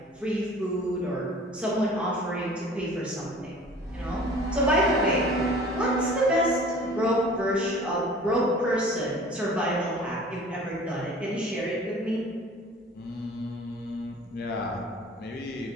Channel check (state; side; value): normal; both; correlation 0.46